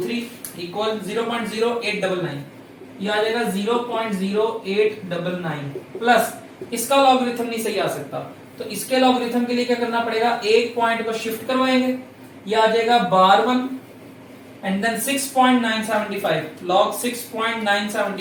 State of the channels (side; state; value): both; identical; correlation 1.00